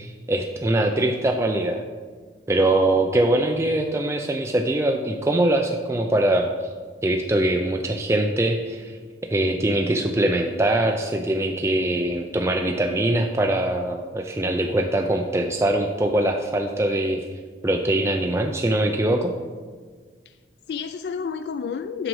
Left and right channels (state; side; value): normal; both; correlation 0.62